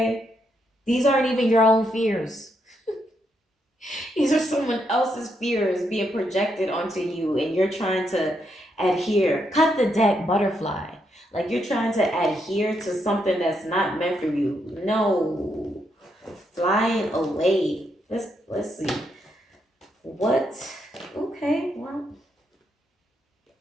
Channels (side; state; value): both; normal; correlation 0.79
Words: These aren't even your own fears. These are someone else's fears being projected onto you, and you're trying to adhere. Cut the deck, butterfly. Like, you're trying to adhere to something that's not meant for you. No. Flying away. Let's see. What? Okay, well.